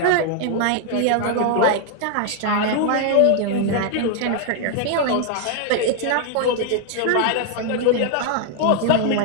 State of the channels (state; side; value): different; both; correlation 0.00